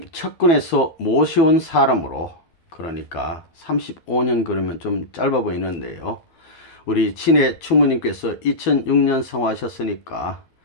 측근에서 모셔온 사람으로, 그러니까 35년 그러면 좀 짧아 보이는데요. 우리 친의 충모님께서 2006년 성화하셨으니까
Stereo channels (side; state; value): right; late; 12 ms